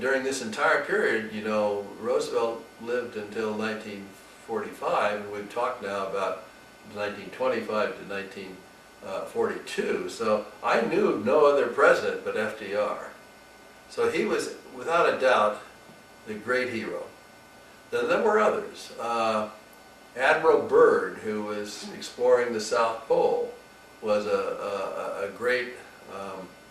during this entire period, you know, Roosevelt lived until 1945, and we've talked now about 1925 to 1942. So I knew no other president but FDR. So he was, without a doubt, the great hero. Then there were others. Admiral Byrd, who was exploring the South Pole, was a great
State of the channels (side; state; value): both; identical; correlation 1.00